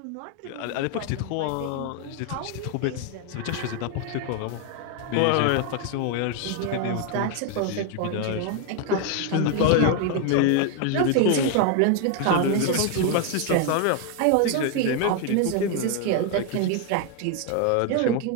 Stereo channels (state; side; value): different; both; correlation 0.01